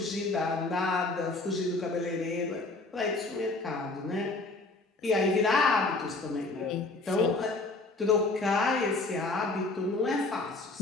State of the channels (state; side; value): quieter; right; 3.3 dB